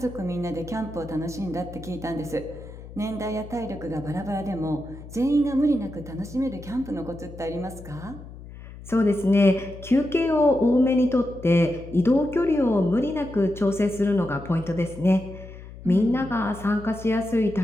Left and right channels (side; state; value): left; noise; hum, 15 dB below the sound